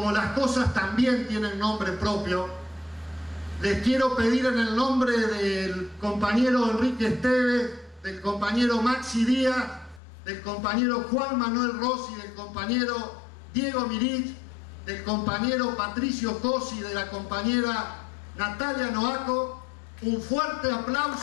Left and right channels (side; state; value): right; drops out; at 10.0 s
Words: las cosas también tienen nombre propio, les quiero pedir en el nombre del compañero Enrique Esteves, del compañero Maxi Díaz, del compañero Juan Manuel Rossi, del compañero Diego Mirich, del compañero Patricio Cosi, de la compañera Natalia Noaco, un fuerte